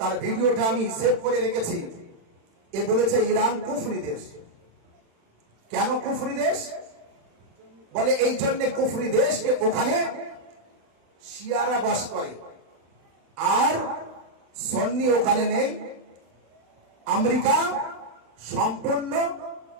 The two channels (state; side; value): late; left; 36 ms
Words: ভিডিওটা আমি সেভ করে রেখেছি। এ বলেছে ইরান কুফরি দেশ। কেন কুফরি দেশ বলে? এই জন্য কুফরি দেশ যে ওখানে শিয়ারা বাস করে, আর সুন্নি ওখানে নেই। আমেরিকা সম্পূর্ণ